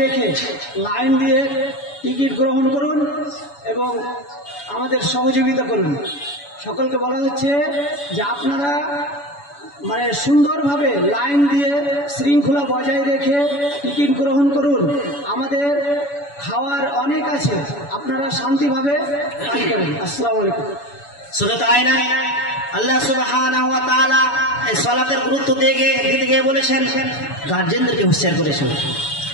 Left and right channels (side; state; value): right; late; 7.0 ms